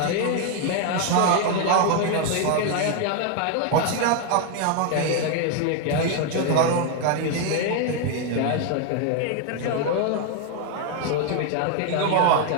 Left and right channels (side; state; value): both; different; correlation 0.01